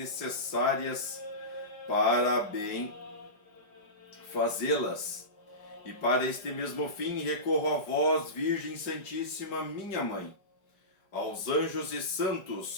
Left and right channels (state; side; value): late; right; 5.1 ms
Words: para bem fazê-las. E para este mesmo fim recorro a vós, Virgem Santíssima, minha Mãe, aos anjos e